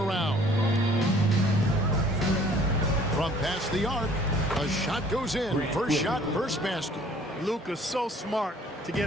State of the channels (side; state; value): both; normal; correlation 0.55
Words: From past the arc, a shot goes in. First shot, first basket. Luka's so smart to